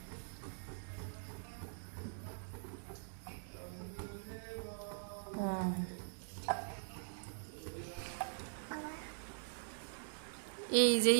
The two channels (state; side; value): silent; left; digital silence